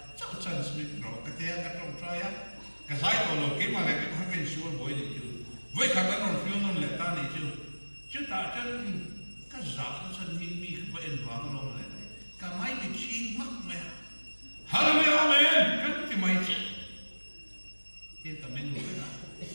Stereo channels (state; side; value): inverted; both; correlation -1.00